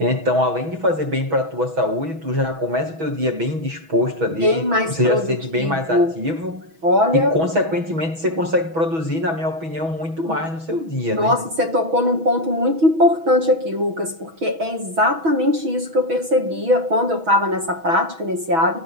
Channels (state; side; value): late; left; 6.2 ms